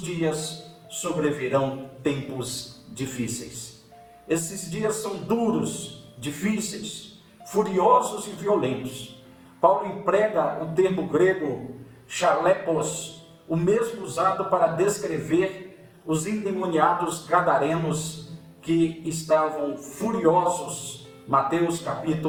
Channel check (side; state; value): both; identical; correlation 1.00